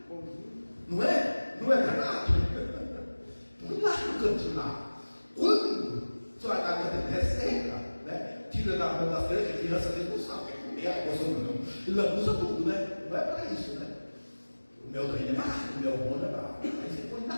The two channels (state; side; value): inverted; both; correlation -1.00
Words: Não é? Não é verdade? Põe lá no cantinho lá. Quando sua garganta é seca, né? Tira da mão das crianças, que a criança às vezes não sabe, quer comer a coisa não. Ele abusa tudo, né? Não é para isso, né? O meu doente é barato, o meu bom é barato. Aí você põe na